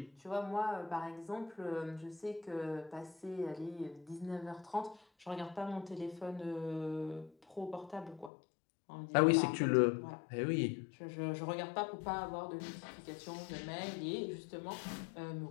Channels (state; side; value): drops out; right; at 8.3 s